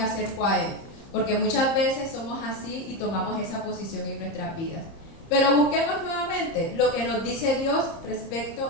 acerco a él. Porque muchas veces somos así y tomamos esa posición en nuestras vidas. Pero busquemos nuevamente lo que nos dice Dios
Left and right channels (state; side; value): late; right; 30 ms